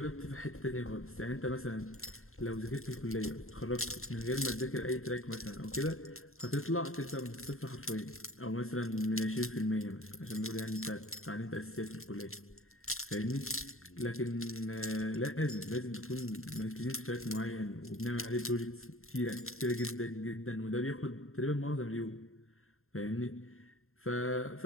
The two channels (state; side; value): late; right; 0.61 ms